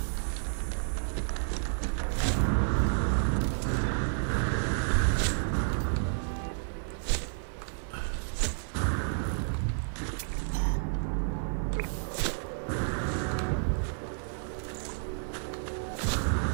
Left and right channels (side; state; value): left; silent; 55 dB below the other